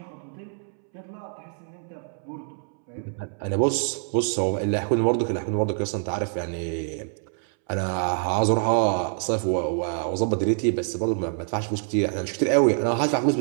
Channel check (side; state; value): left; silent; 61 dB below the other